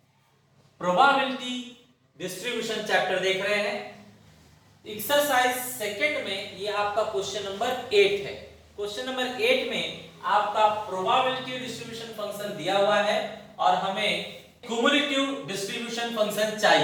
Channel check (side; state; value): both; identical; correlation 1.00